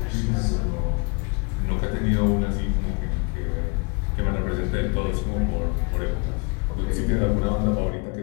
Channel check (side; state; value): right; quieter; 31.8 dB